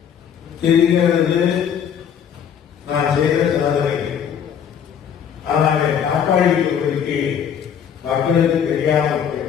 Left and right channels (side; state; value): right; quieter; 8.3 dB